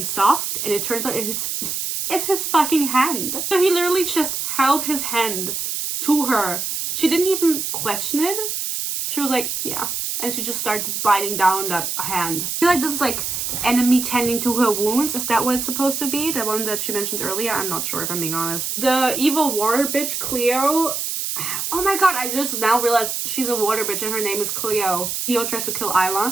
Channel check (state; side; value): noise; right; hiss, 3 dB below the sound